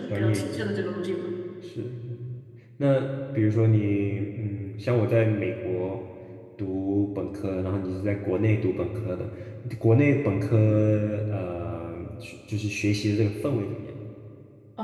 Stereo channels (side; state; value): both; identical; correlation 1.00